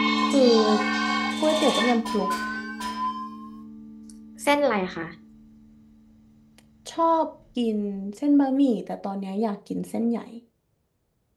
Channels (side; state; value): both; identical; correlation 1.00